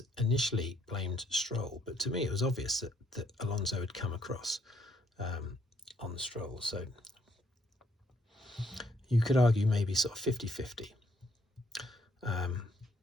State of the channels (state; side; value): normal; both; correlation 0.70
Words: initially blamed Stroll, but to me it was obvious that Alonso had come across on Stroll. So you could argue maybe sort of 50-50.